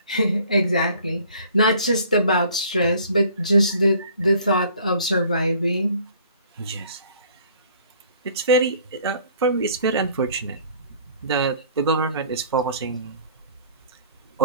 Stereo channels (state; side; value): inverted; both; correlation -0.54